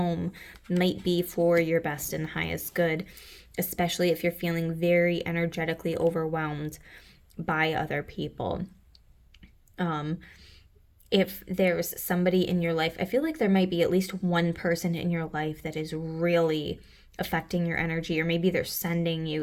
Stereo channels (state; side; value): identical; both; correlation 1.00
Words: might be for your best and highest good, especially if you're feeling very energetically overwhelmed by other people. If there's somebody in your life, I feel like there might be at least one person in your life that is really affecting your energy, or maybe they're sending